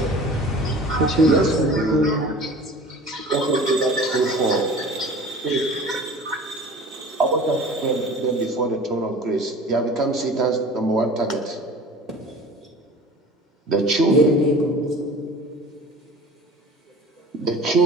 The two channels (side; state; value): both; normal; correlation 0.42